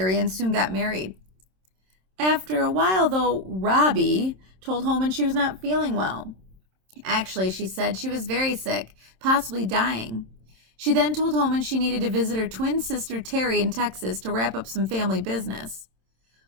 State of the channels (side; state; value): left; late; 27 ms